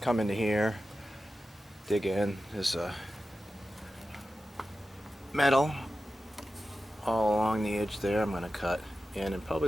into here, dig in. There's metal all along the edge there. I'm going to cut in and probably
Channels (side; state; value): both; normal; correlation 0.93